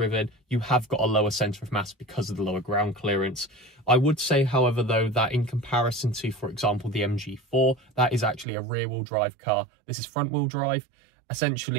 You have got a lower centre of mass because of the lower ground clearance. I would say, however, though, that in comparison to, for example, the MG4, that is actually a rear-wheel drive car. This is front-wheel drive.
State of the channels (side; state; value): left; drops out; at 8.5 s